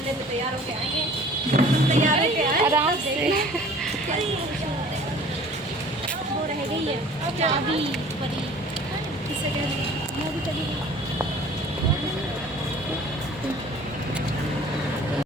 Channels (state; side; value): normal; both; correlation 0.49